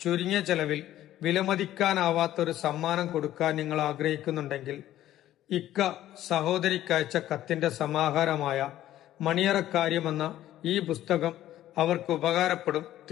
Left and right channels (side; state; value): right; quieter; 13.3 dB